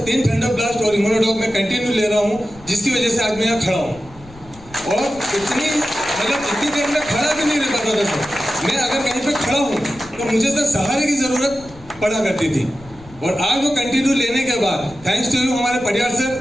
3 थंडर ब्लास्ट और इम्यूनोडॉग मैं कंटिन्यू ले रहा हूँ, जिसकी वजह से आज मैं यहाँ खड़ा हूँ। और इतनी देर में खड़ा भी नहीं रह पाता था सर। मैं अगर कहीं पे खड़ा हूँ तो मुझे सर सहारे की ज़रूरत पड़ा करती थी, और आज वो कंटिन्यू लेने के बाद थैंक्स टू यू हमारे परिवार सर,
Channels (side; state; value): left; noise; rumble, 21 dB below the sound